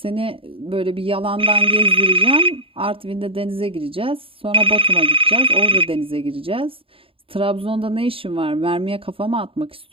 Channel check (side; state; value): left; late; 0.27 ms